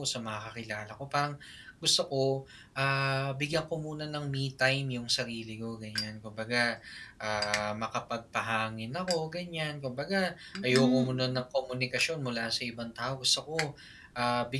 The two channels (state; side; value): identical; both; correlation 1.00